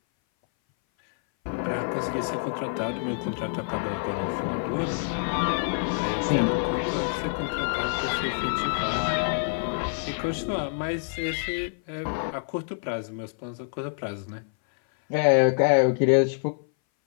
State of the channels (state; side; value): silent; right; 59 dB below the other